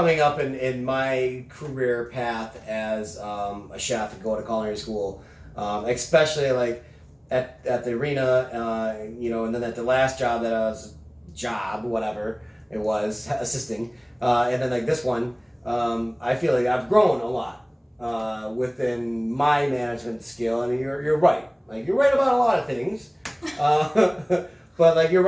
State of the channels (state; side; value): identical; both; correlation 1.00